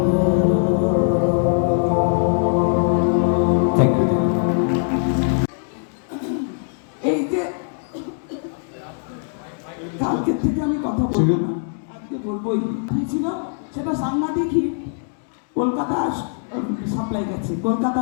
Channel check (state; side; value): silent; right; digital silence